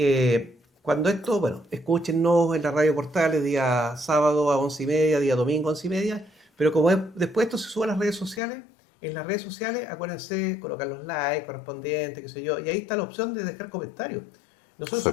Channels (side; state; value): right; drops out; at 8.4 s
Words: cuando esto, bueno, escúchenos en la radio Portales día sábado a 11:30, día domingo a 11:30, pero como después esto se sube a las redes sociales, en las redes sociales acuérdense colocar los likes correspondientes, qué sé yo, y ahí está la opción de dejar comentarios. Nosotros esos